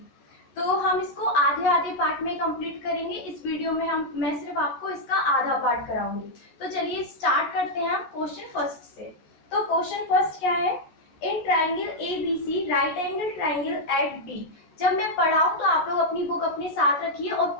तो हम इसको आधे आधे पार्ट में कंप्लीट करेंगे। इस वीडियो में मैं सिर्फ आपको इसका आधा पार्ट कराऊंगी। तो चलिए स्टार्ट करते हैं हम क्वेश्चन फर्स्ट से। तो क्वेश्चन फर्स्ट क्या है? In triangle ABC right angle triangle at B। जब मैं पढ़ाऊं तो आप लोग अपनी बुक अपने साथ रखिए और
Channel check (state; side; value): late; right; 14 ms